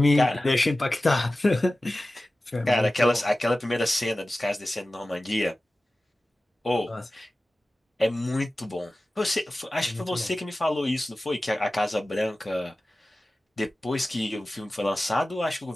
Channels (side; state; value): both; normal; correlation 0.96